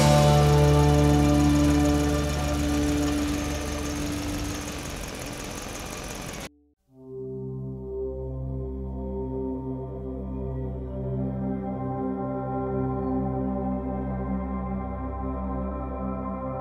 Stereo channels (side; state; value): both; identical; correlation 1.00